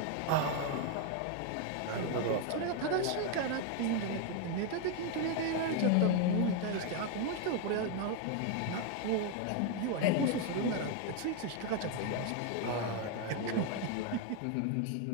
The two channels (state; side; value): different; both; correlation 0.01